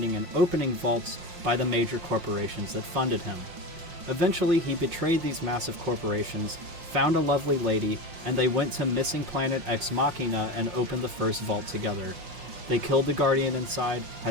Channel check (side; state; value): left; late; 5.6 ms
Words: and opening vaults by the major corporations that funded him. Eventually he betrayed these massive corporations, found a lovely lady, and they went to missing planet Ex Machina and opened the first vault together. They killed the Guardian inside,